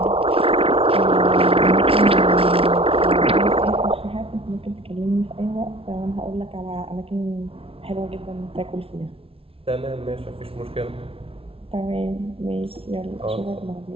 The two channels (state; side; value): late; left; 0.27 ms